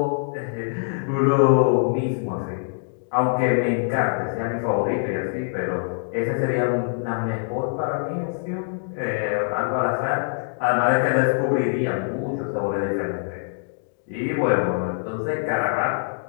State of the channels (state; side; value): silent; right; digital silence